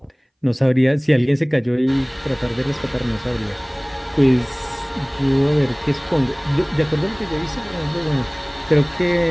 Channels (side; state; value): both; identical; correlation 1.00